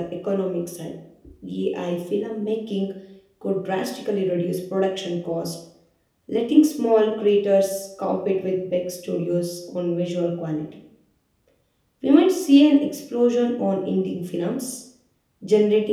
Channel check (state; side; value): identical; both; correlation 1.00